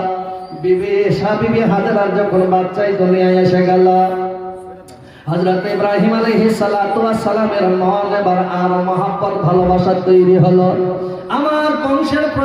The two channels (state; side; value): identical; both; correlation 1.00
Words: বিবি হাজেরার যখন বাচ্চাই দুনিয়ায় এসে গেল, হযরত ইব্রাহিম আলাইহিস সালাতু ওয়াস সালামের মন এবার আর মহব্বত ভালোবাসা তৈরি হলো। আমার বংশের